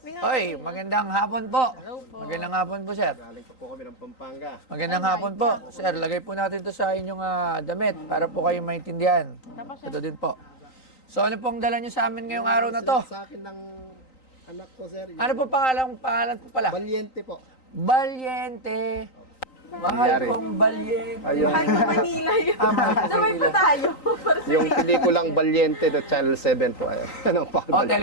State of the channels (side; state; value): right; late; 3.9 ms